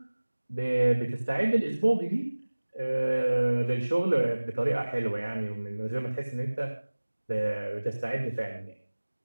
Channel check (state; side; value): inverted; both; correlation -1.00